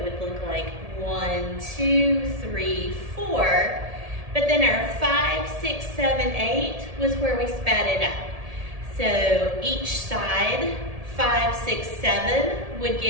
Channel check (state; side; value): late; left; 1.7 ms